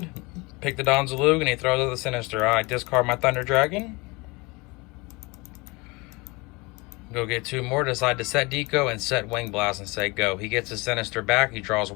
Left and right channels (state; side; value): quieter; right; 25.7 dB